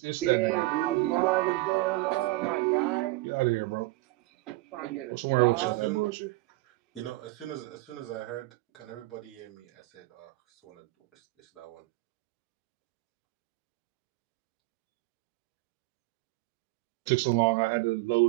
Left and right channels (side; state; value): left; quieter; 20.4 dB